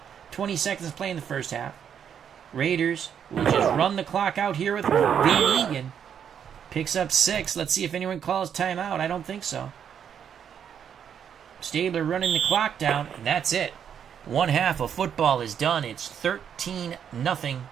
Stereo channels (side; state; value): left; quieter; 8.3 dB